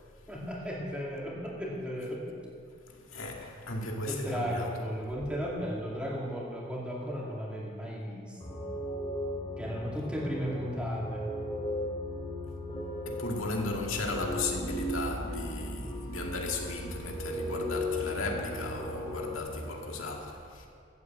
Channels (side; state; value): both; normal; correlation 0.52